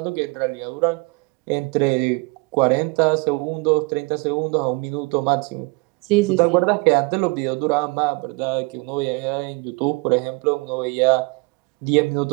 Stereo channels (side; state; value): left; quieter; 29.2 dB